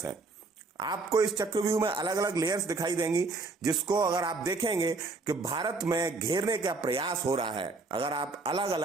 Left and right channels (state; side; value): quieter; left; 3.7 dB